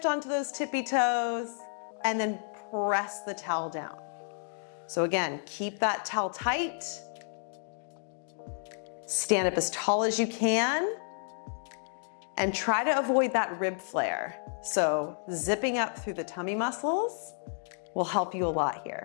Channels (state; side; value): silent; right; digital silence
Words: onto those tippy toes, and then press the towel down. So again, keep that towel tight. Stand up as tall as you can. And try to avoid that rib flare. So zipping up through the tummy muscles will help you a lot